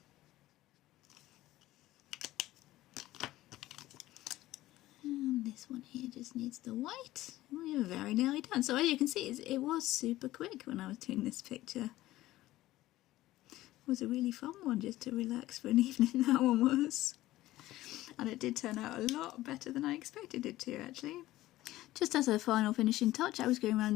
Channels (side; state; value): right; quieter; 16.1 dB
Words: This one here just needs the white. We were very nearly done. So as you can see, it was super quick when I was doing this picture. It was a really fun one just to relax for an evening, that one was. And it did turn out a lot better than I expected it to, actually. Just as a final finishing touch, I was going around